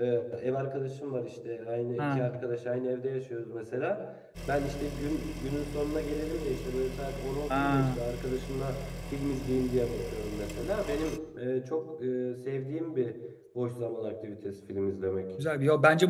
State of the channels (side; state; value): both; identical; correlation 1.00